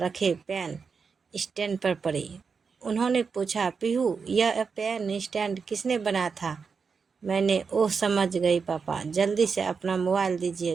पेन स्टैंड पर पड़ी। उन्होंने पूछा, पीहू यह पेन स्टैंड किसने बनाया था। मैंने। ओह समझ गई पापा, जल्दी से अपना मोबाइल दीजिए।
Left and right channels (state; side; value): quieter; left; 5.4 dB